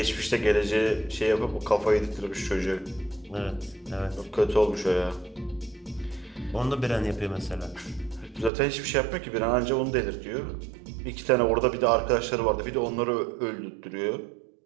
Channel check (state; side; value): drops out; left; at 8.5 s